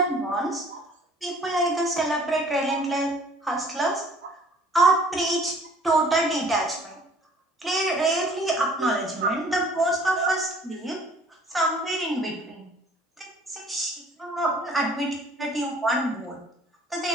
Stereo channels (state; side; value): normal; both; correlation 0.53